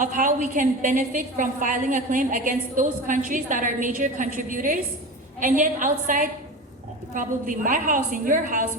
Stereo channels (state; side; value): normal; both; correlation 0.29